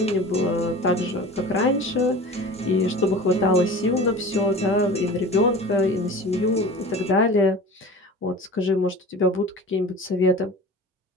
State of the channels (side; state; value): both; normal; correlation 0.38